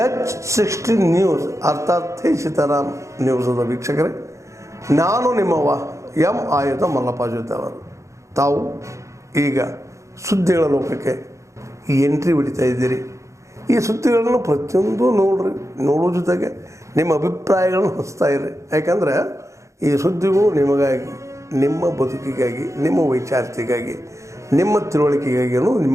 H60 ನ್ಯೂಸ್ ಅರ್ಥಾತ್ ಸೀತಾರಾಮ್ ನ್ಯೂಸದ ವೀಕ್ಷಕರೇ, ನಾನು ನಿಮ್ಮವ ಎಂ ಆಯುಧ ಮಲ್ಲಪ್ಪ ಜೊತೆ ಅವರು. ತಾವು ಈಗ ಸುದ್ದಿಗಳ ಲೋಕಕ್ಕೆ ಎಂಟ್ರಿ ಹೊಡಿತಾ ಇದ್ದೀರಿ. ಈ ಸುದ್ದಿಗಳನ್ನು ಪ್ರತಿಯೊಂದು ನೋಡೋ ಜೊತೆಗೆ ನಿಮ್ಮ ಅಭಿಪ್ರಾಯಗಳನ್ನು ಹಂಚ್ತಾ ಇರಿ. ಯಾಕಂದರೆ ಈ ಸುದ್ದಿಗಳು ನಿಮಗಾಗಿ, ನಿಮ್ಮ ಬದುಕಿಗಾಗಿ, ನಿಮ್ಮ ವೈಚಾರಿಕೆಗಾಗಿ, ನಿಮ್ಮ ತಿಳುವಳಿಕೆಗಾಗಿಯೂ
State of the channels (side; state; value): left; late; 0.15 ms